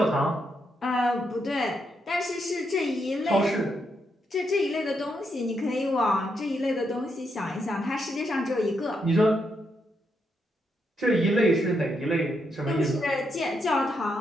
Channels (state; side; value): normal; both; correlation 0.80